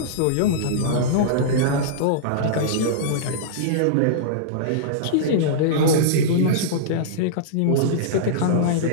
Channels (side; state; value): both; different; correlation -0.03